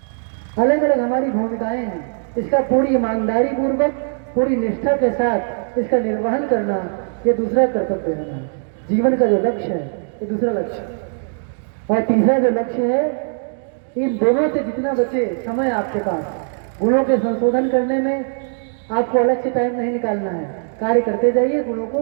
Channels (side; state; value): left; silent; 65 dB below the other